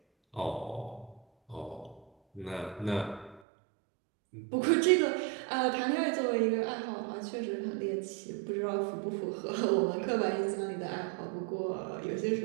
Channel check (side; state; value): left; drops out; at 3.4 s